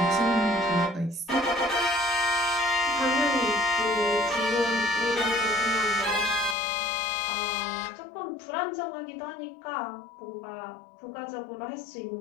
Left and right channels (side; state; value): right; drops out; at 6.6 s